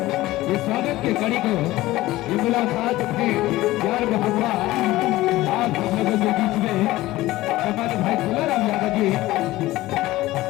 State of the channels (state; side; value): quieter; right; 17.3 dB